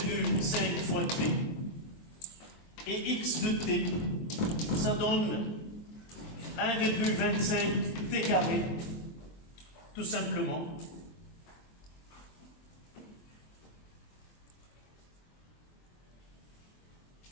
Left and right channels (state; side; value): late; right; 23 ms